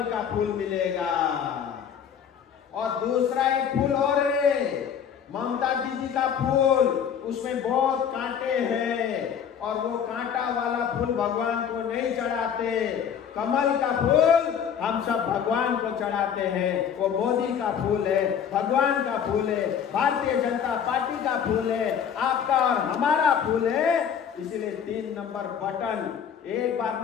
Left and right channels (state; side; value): quieter; right; 8.0 dB